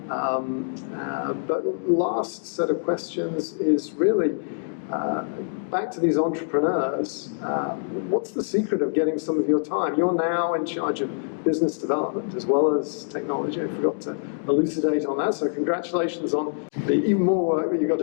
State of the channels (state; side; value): silent; right; digital silence